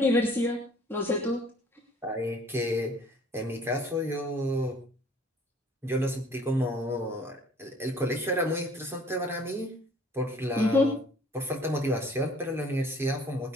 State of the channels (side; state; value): both; normal; correlation 0.54